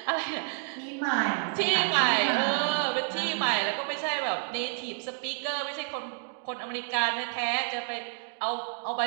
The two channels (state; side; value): silent; left; 58 dB below the other